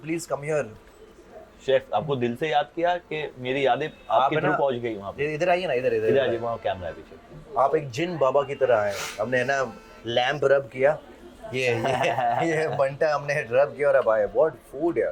please come here. Chef आपको दिल से याद किया कि मेरी यादें आपके है थ्रू ना, पहुंच गई वहाँ पे। इधर आइए ना, इधर इधर इधर आ जाइए, वहाँ कैमरा है पीछे। आप एक जिन बाबा की तरह आए, हमने ना लैंप रब किया, ये बंटा हमने रब किया और अब आए, व्हाट फूड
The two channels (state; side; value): identical; both; correlation 1.00